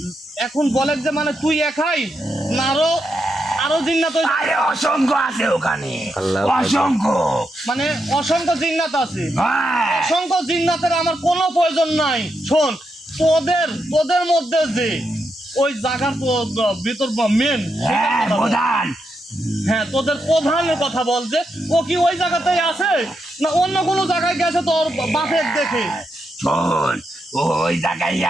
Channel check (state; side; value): normal; both; correlation 0.83